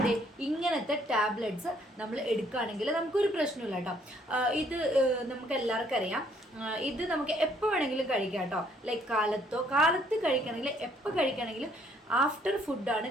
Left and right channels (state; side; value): normal; both; correlation 0.65